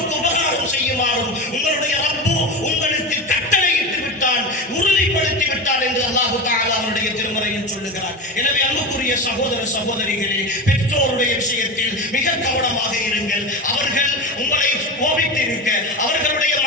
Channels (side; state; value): both; normal; correlation 0.23